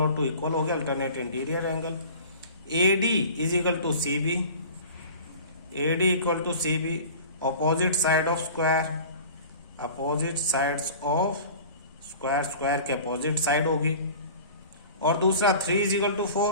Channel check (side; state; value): both; inverted; correlation -0.41